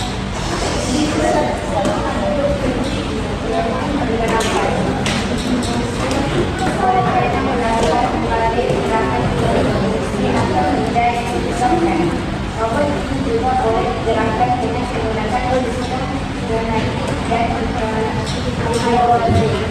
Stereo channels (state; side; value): identical; both; correlation 1.00